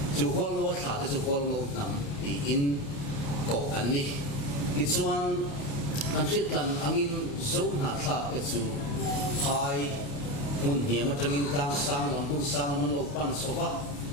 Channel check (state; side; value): late; right; 28 ms